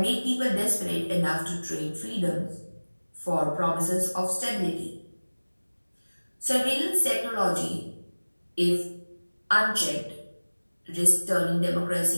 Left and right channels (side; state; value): both; inverted; correlation -1.00